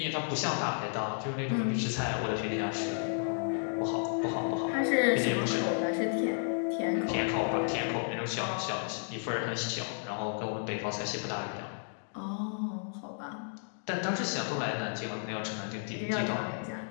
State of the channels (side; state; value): right; silent; digital silence